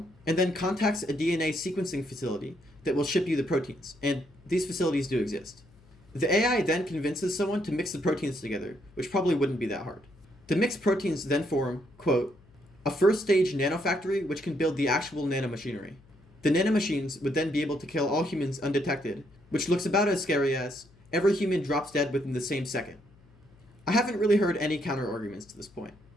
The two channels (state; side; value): noise; left; hum, 27 dB below the sound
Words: and then contacts a DNA sequencing facility that will ship you the proteins, and these facilities do exist. The AI then convinces someone to mix the proteins together, which probably wouldn't be that hard. The mixed proteins then form, quote, a first-stage nanofactory which can build the actual nanomachinery. The nanomachines would then be able to kill all humans undetected, which looks about as scary as every human drops dead within the same second. I haven't really heard any counter-arguments to this point.